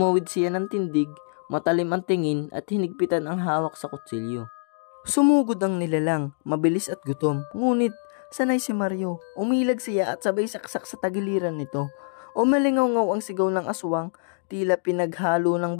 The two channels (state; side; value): silent; right; digital silence